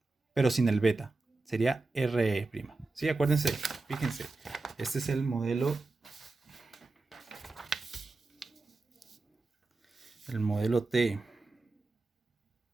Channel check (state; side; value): quieter; left; 3.4 dB